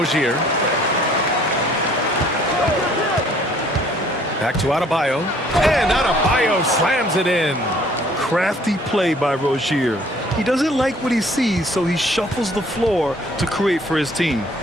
Back to Adebayo. And Adebayo slams it in. Crafty play by Rozier. He doesn't like what he sees, so he shuffles the floor to create for his team.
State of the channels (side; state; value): both; normal; correlation 0.58